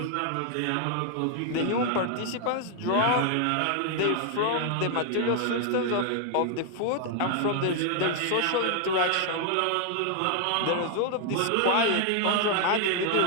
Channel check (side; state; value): both; different; correlation 0.00